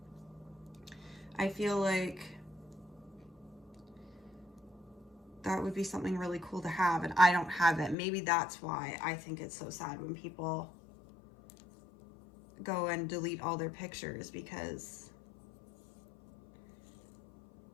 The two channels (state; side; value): drops out; right; at 8.0 s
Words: I feel like that would be something really cool to have, and I don't have it. Maybe that's why I think it's so sad when people go and delete all their pictures, because